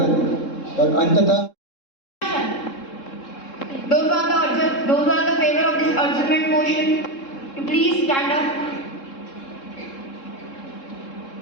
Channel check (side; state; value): right; late; 3.7 ms